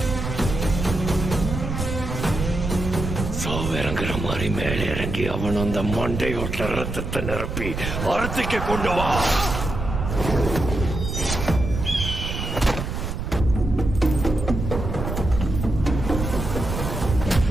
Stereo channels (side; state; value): right; noise; rumble, 4 dB below the sound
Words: சாவிறங்குற மாதிரி மேலே இறங்கி அவன் அந்த மண்டையோட்ட ரத்தத்தை நிரப்பி அறுத்துக்கு கொண்டு வா.